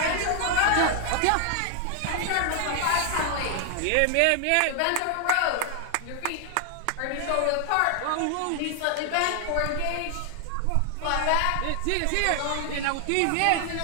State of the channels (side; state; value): both; different; correlation 0.00